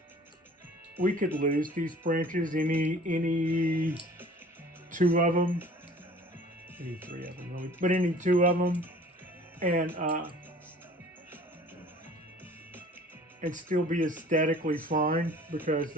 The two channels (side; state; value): both; normal; correlation 0.48